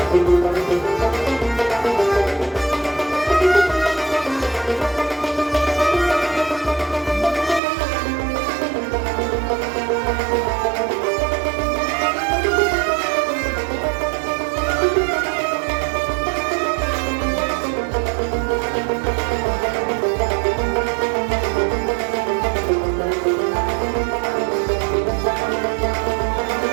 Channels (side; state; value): left; drops out; at 7.6 s